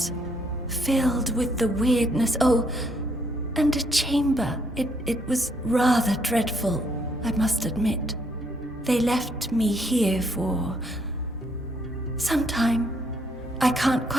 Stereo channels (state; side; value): normal; both; correlation 0.71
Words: filled with the weirdness. Oh, and a chamber. It was rather dreadful, I must admit. They left me here for some time. I can't